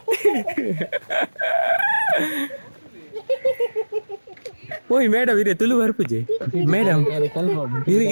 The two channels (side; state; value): both; inverted; correlation -1.00